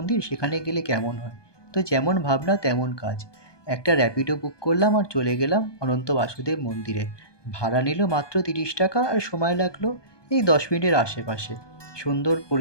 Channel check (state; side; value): late; right; 1.2 ms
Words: সেখানে গেলে কেমন হয়। তো যেমন ভাবনা তেমন কাজ। একটা র্যাপিডো বুক করলাম আর চলে গেলাম অনন্ত বাসুদেব মন্দিরে। ভাড়া নিল মাত্র ৩০ টাকা আর সময় লাগলো এই ১০ মিনিটের আশেপাশে। সুন্দর